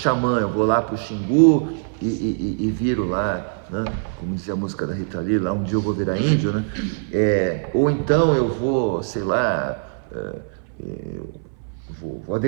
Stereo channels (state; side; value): silent; left; 59 dB below the other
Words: eu vou lá para o Xingu e viro lá, né? Como dizia a música da Rita Lee, lá um dia eu vou virar índio, né? Ou então eu vou, sei lá, vou